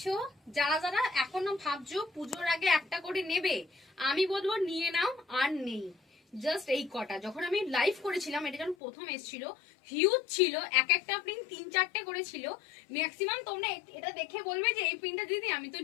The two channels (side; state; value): right; drops out; at 8.8 s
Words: যারা যারা এখনো ভাবছো পুজোর আগে একটা করে নেবে, আমি বলবো নিয়ে নাও। আর নেই, জাস্ট এই কটা। যখন আমি লাইভ করেছিলাম, এটা যখন প্রথম এসেছিল, হিউজ ছিল, এক একটা প্রিন্ট 3-4টে করে ছিল। ম্যাক্সিমাম তোমরা এটা দেখে বলবে যে এই প্রিন্টটা দিদি আমি তো